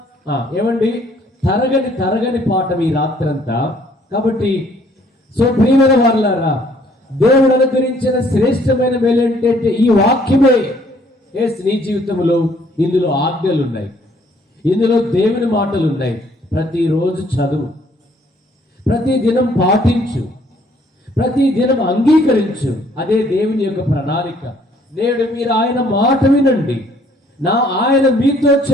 ఏమండి తరగని పాఠం ఈ రాత్రంతా. కాబట్టి ప్రియమైన వారలారా, దేవుడు అనుగ్రహించిన శ్రేష్టమైన మేలు ఏంటంటే ఈ వాక్యమే. నీ జీవితంలో ఇందులో ఆజ్ఞలు ఉన్నాయి, ఇందులో దేవుని మాటలు ఉన్నాయి. ప్రతిరోజు చదువు, ప్రతి దినం పాటించు, ప్రతి దినం అంగీకరించు. అదే దేవుని యొక్క ప్రణాళిక. నేడు మీరు ఆయన మాట వినండి, ఆయన మీతో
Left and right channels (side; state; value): both; normal; correlation 0.62